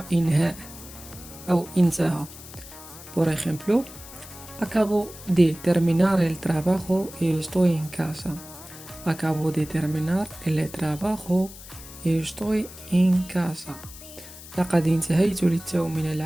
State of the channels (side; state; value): left; noise; hiss, 16 dB below the sound